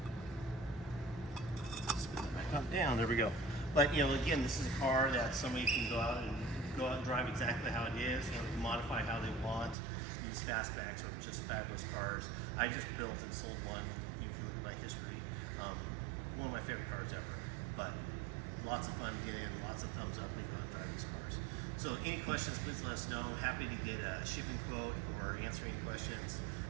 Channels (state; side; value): drops out; left; at 9.8 s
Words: that back up down, there we go. But again, this is a car that somebody can go out and drive exactly how it is, modify how they want. These Fastbacks are just fabulous cars. I just built and sold one. If you look at my history, one of my favorite cars ever. But lots of fun to get in, lots of thumbs up when you go out and drive these cars. So any questions, please let us know. Happy to get a shipping quote or answer any questions.